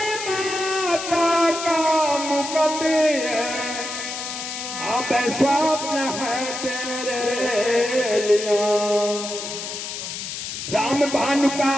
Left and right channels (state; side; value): noise; left; hiss, 7 dB below the sound